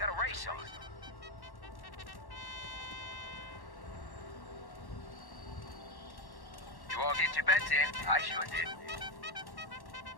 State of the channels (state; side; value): late; right; 1.1 ms